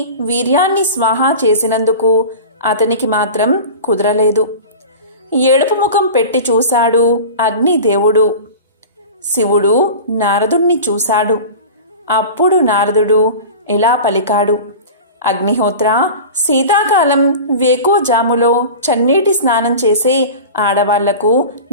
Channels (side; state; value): both; inverted; correlation -0.33